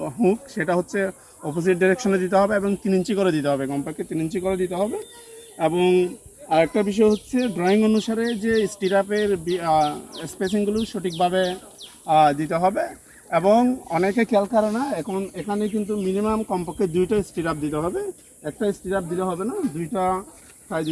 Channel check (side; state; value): both; identical; correlation 1.00